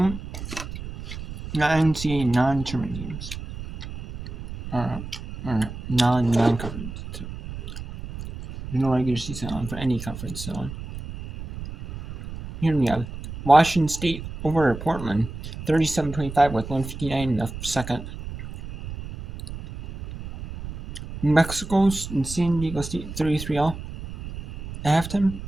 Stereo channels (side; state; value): right; noise; rumble, 10 dB below the sound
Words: not NCAA non-tournament games. Or non-conference. There's no regular season on for any conference on. Here we have Washington State over Portland, 37-25 with 1:59 in the second. New Mexico's and San Diego State 33-all at halftime.